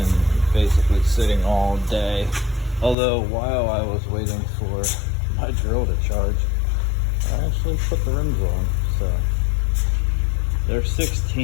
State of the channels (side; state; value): right; drops out; at 3.0 s